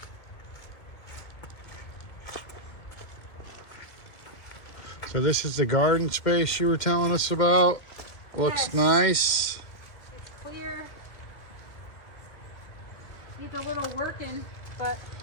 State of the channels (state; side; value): late; right; 2.5 ms